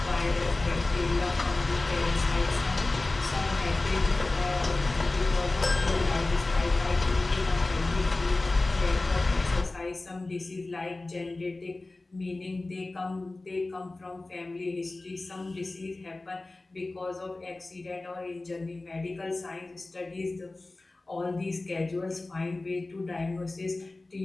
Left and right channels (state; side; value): quieter; right; 3.1 dB